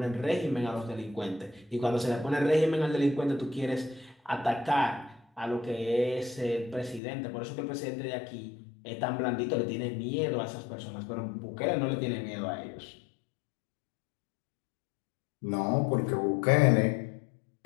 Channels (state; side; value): drops out; right; at 7.0 s